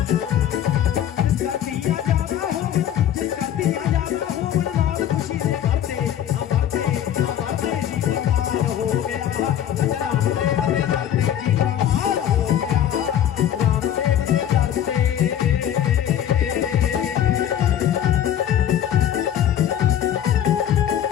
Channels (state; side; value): quieter; right; 10.3 dB